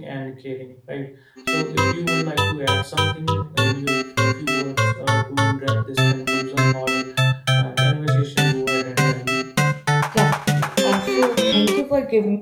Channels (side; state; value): both; identical; correlation 1.00